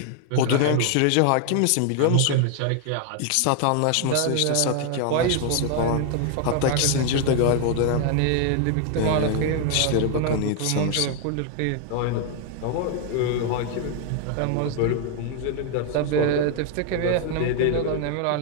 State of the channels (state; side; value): different; both; correlation 0.00